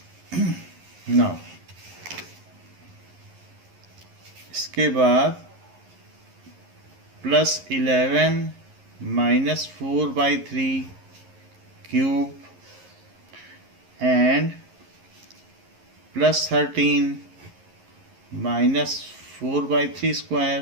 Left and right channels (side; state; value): left; late; 11 ms